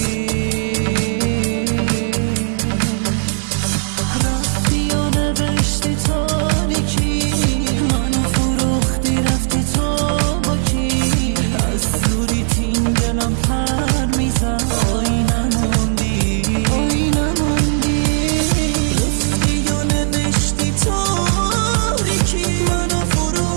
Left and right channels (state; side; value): silent; left; digital silence